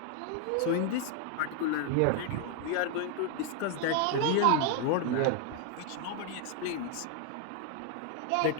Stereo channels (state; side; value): different; both; correlation 0.00